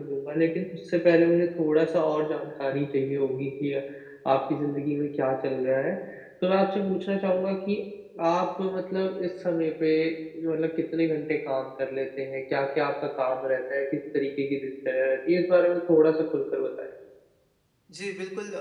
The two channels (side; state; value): both; identical; correlation 1.00